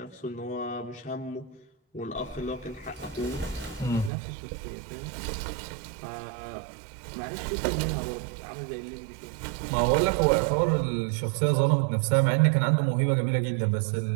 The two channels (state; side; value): drops out; left; at 4.1 s